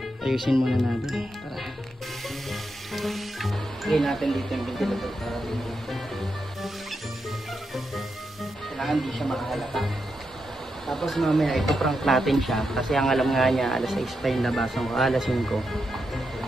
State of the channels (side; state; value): both; normal; correlation 0.85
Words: Ayusin muna natin. Tara. Lagay natin dito yung ventilator para dito. Kailangan di siya makahalata. Tapos mamaya ipaprank natin siya kasi ang alam nga niya alas 6 pa yung labasan ko, alas 5.